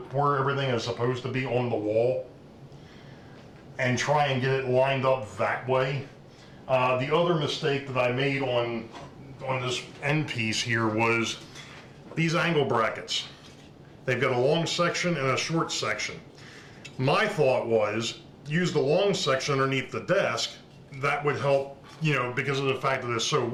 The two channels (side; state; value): both; identical; correlation 1.00